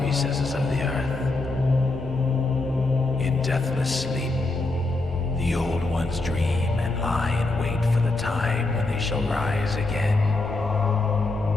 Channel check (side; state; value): right; quieter; 3.1 dB